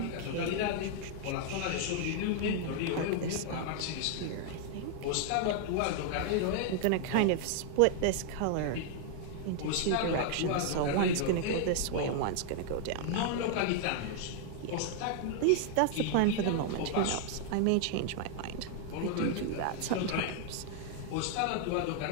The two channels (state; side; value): different; both; correlation 0.00